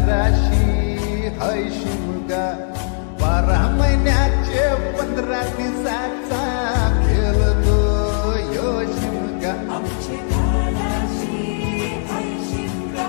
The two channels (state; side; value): silent; right; 66 dB below the other